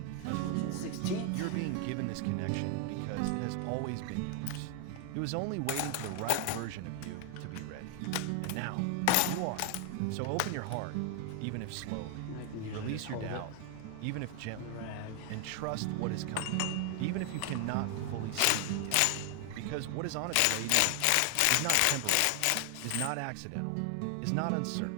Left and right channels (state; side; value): different; both; correlation 0.00